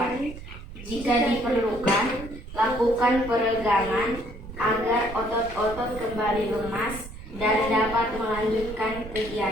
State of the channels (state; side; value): noise; right; rumble, 13 dB below the sound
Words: Jika diperlukan, lakukan peregangan agar otot-otot kembali lemas dan dapat melanjutkan